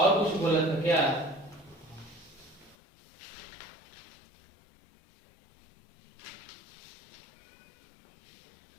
कुछ बोला था क्या,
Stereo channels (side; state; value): right; drops out; at 2.8 s